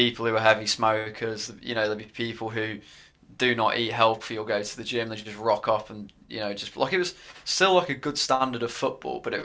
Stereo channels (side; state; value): both; identical; correlation 1.00